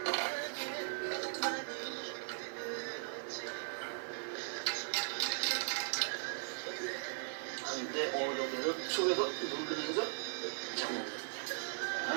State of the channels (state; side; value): silent; left; digital silence